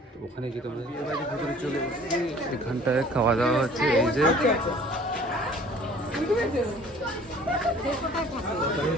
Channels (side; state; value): both; normal; correlation 0.51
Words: তো ওখানে গিয়ে তোমাদের বিয়ে বাড়ির ভিতরে চলে এসেছি। এখানটায় খাওয়া দাওয়া হচ্ছে, এই যে